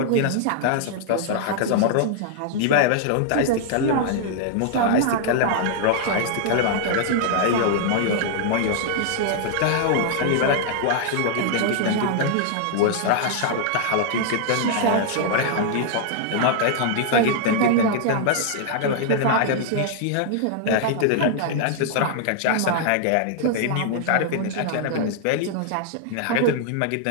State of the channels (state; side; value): different; both; correlation -0.01